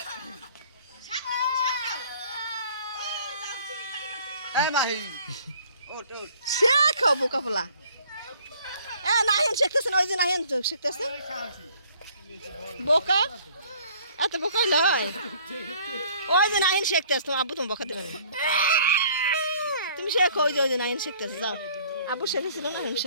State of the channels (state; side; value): inverted; both; correlation -0.56